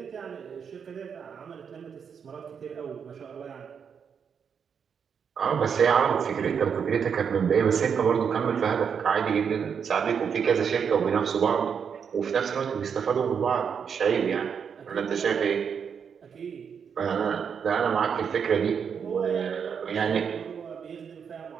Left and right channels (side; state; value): left; quieter; 6.9 dB